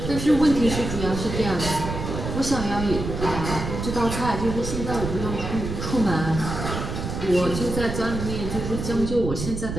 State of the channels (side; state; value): right; noise; rumble, 5 dB below the sound